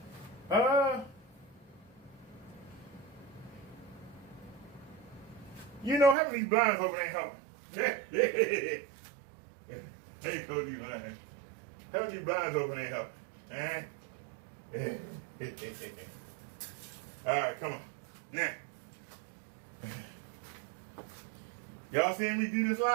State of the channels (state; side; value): drops out; left; at 6.2 s